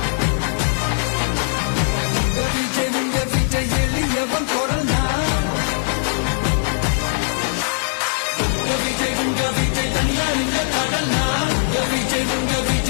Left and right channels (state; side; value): silent; right; digital silence